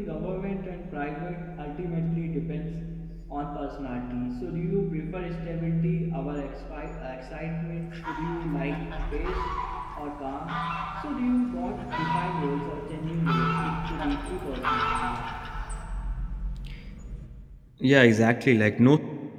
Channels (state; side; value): identical; both; correlation 1.00